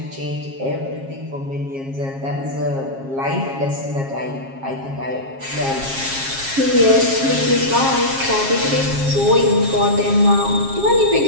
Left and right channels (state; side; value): late; left; 7.4 ms